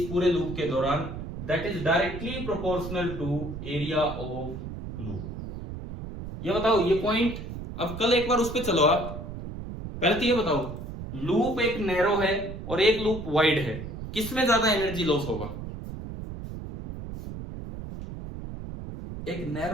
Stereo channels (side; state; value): right; noise; rumble, 9 dB below the sound